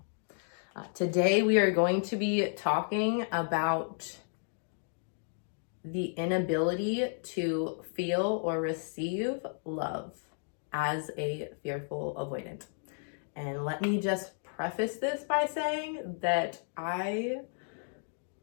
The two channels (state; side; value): silent; right; digital silence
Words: Today we are going to be talking about the inability to feel or receive love as a fearful avoidant. And let me just preface this by saying that I